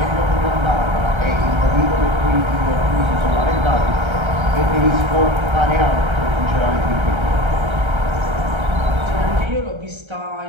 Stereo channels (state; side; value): late; left; 1.3 ms